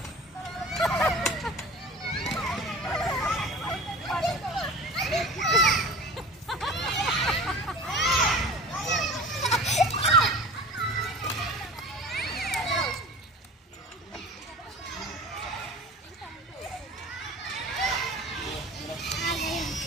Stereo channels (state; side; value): normal; both; correlation 0.39